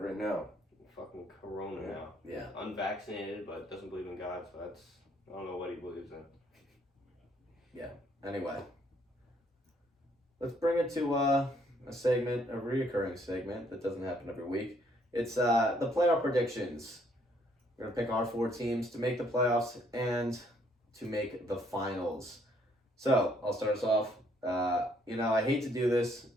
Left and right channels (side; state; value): both; normal; correlation 0.67